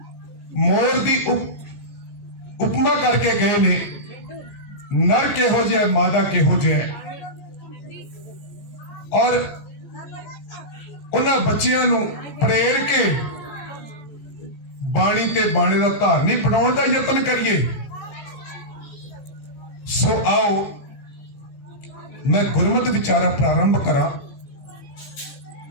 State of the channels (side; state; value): right; late; 15 ms